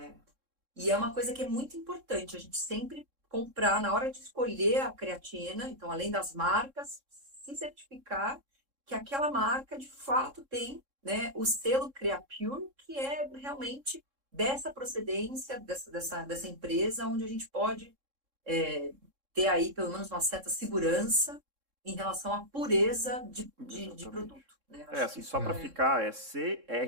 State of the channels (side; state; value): left; late; 3.7 ms